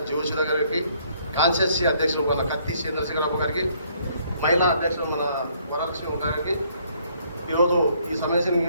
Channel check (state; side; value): inverted; both; correlation -0.66